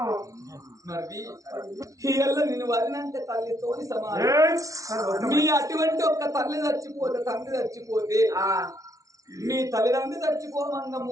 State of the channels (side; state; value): left; late; 0.17 ms